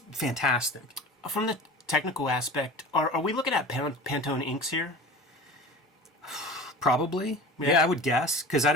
fantastic. From the technical aspect, are we looking at Pantone inks here? Probably. Yeah, I would guess, because I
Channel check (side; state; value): both; normal; correlation 0.37